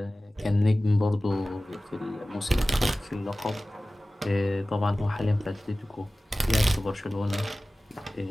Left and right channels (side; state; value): both; normal; correlation 0.97